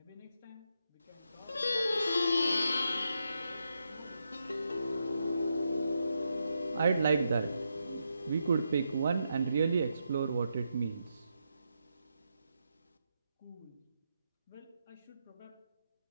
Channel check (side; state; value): both; inverted; correlation -0.83